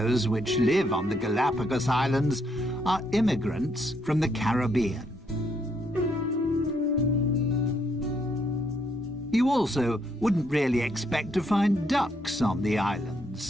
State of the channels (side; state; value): both; normal; correlation 0.73